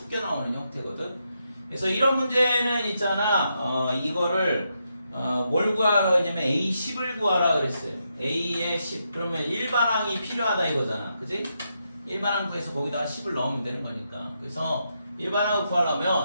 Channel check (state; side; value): inverted; both; correlation -0.82